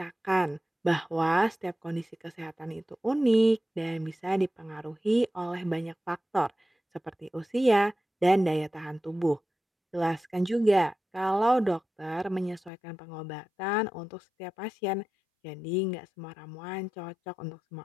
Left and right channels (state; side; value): drops out; right; at 12.7 s